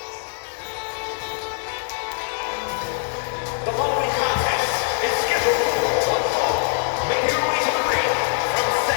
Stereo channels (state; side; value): silent; right; 63 dB below the other